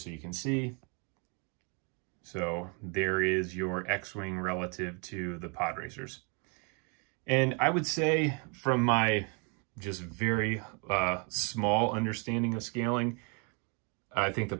you can see. So there is your X-Wing relative to the Podracers. And I would say from my just very small understanding of scaling, I think the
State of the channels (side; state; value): left; quieter; 35.0 dB